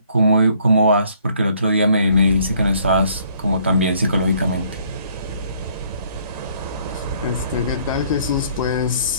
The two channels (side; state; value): both; inverted; correlation -0.63